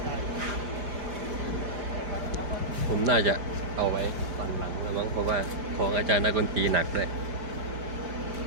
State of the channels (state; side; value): late; left; 5.0 ms